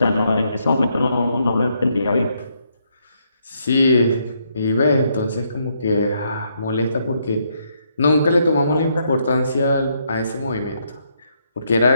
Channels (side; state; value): both; inverted; correlation -0.75